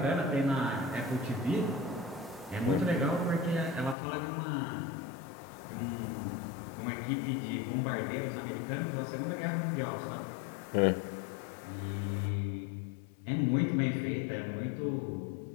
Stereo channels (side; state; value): right; drops out; at 4.0 s